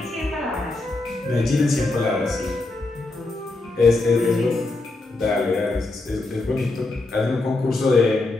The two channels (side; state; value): right; quieter; 3.1 dB